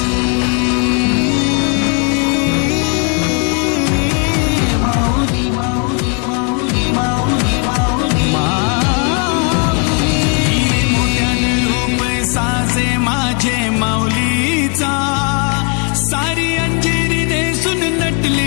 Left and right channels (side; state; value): right; quieter; 37.3 dB